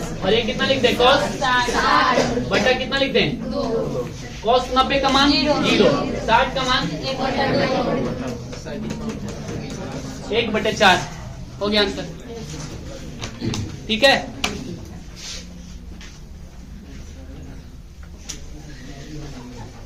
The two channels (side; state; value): both; identical; correlation 1.00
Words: और ये कितना लिख दे cos 60 बटा कितना लिख दे, cos 90 का मान 0, 60 का मान 1/4 हो गया आंसर, ठीक है।